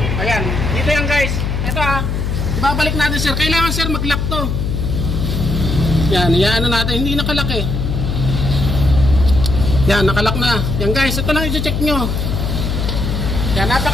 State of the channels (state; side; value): noise; left; hum, 1 dB below the sound